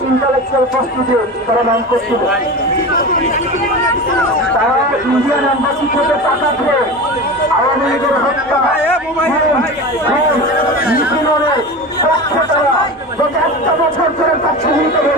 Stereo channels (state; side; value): normal; both; correlation 0.28